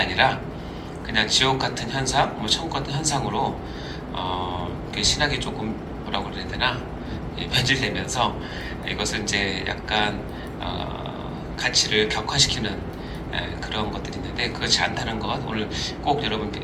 그냥 지옥 같은 현상, 천국 같은 현상으로 신학이 조금 뭐라고 그래야 되나 변질되면서 이것을 이제 약간 가치를 격화시키는 그런 것들이 있는데, 그렇지 않다는 것 오늘 꼭 여러분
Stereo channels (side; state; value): both; identical; correlation 1.00